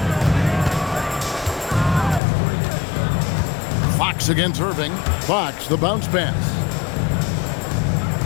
Fox against Irving. Fox, the bounce pass.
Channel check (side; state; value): right; drops out; at 2.2 s